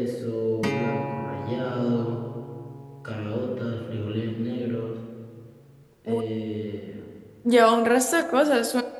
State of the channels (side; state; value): both; identical; correlation 1.00